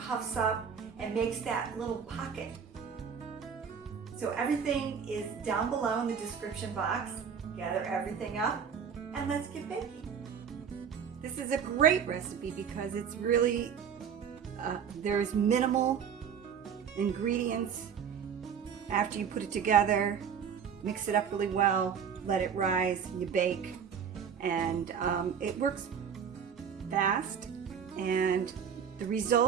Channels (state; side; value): quieter; left; 7.4 dB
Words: up and makes that little pocket. So everything is down below in the description box. Gather everything up, and let's get baking. This is a great recipe because it's really, there's minimal ingredients. After you put it together, mix it up really well, let it rise, you bake, and it works fast, and the